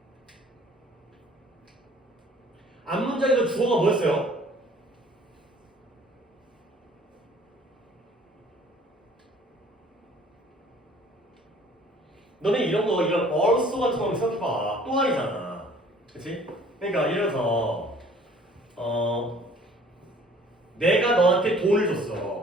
앞문장에서 주어가 뭐였어요? 너네 이런 거 이런 also 같은 거 생각해봐. 또한이잖아. 그치? 그러니까 예를 들어서 내가 너한테 돈을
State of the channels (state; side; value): normal; both; correlation 0.54